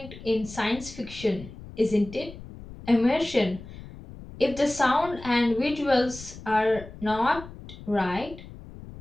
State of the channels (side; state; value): left; noise; rumble, 15 dB below the sound